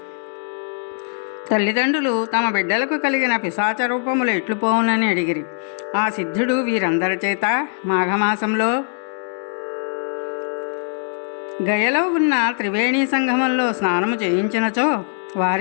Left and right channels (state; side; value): silent; right; digital silence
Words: తల్లిదండ్రులు తమ బిడ్డలకు కలిగిన పిశాచ రూపములు ఎట్లు పోవునని అడిగిరి. ఆ సిద్ధుడు వీరందరి చేత మాఘమాసంలో గయలో ఉన్న త్రివేణీ సంగమంలో స్నానము చేయించినచో